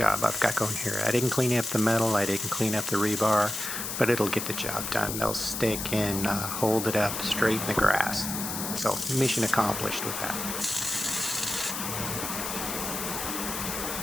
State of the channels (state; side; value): noise; left; hiss, 4 dB below the sound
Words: I've got going here. I didn't clean up the metal, I didn't clean up the rebar, but it'll get the job done. They'll stick and hold it up straight in the grass. So mission accomplished with that.